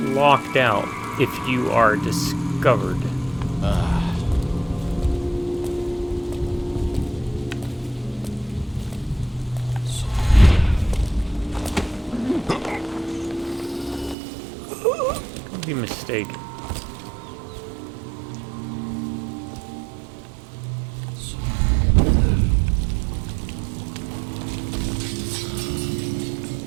locked out if you are discovered. Could be mistaken.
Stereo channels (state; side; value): drops out; left; at 14.2 s